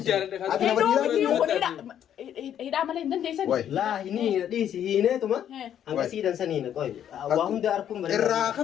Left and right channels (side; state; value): right; quieter; 9.9 dB